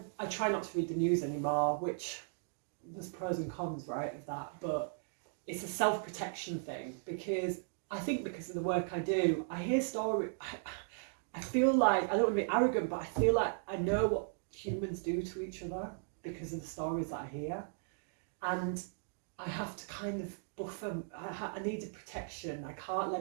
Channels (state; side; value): silent; left; digital silence